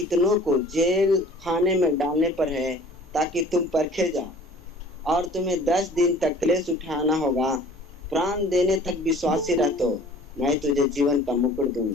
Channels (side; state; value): both; normal; correlation 0.48